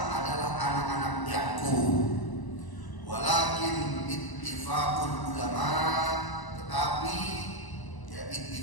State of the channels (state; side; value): late; right; 1.0 ms